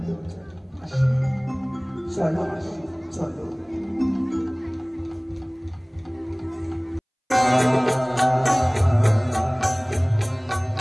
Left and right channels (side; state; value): both; identical; correlation 1.00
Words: চলো মাসি, চলো।